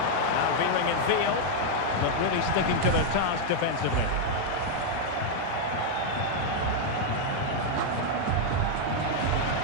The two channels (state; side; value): different; both; correlation 0.00